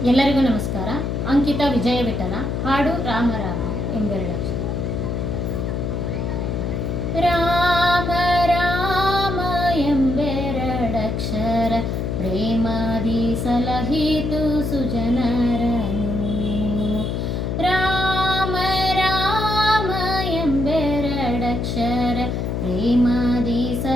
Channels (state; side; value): noise; left; hum, 1 dB below the sound